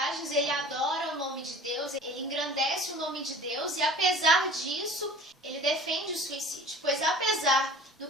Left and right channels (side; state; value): both; normal; correlation 0.44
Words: ele adora o nome de Deus, ele engrandece o nome de Deus e, apesar disso, ele defende o suicídio. Pois, apesar do